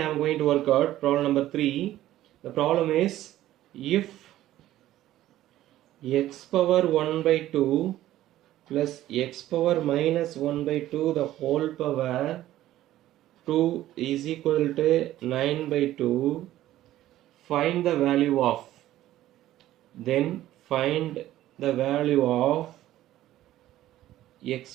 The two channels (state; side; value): quieter; left; 14.1 dB